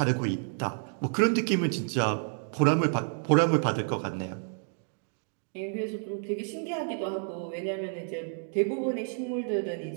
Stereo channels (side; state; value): left; silent; 58 dB below the other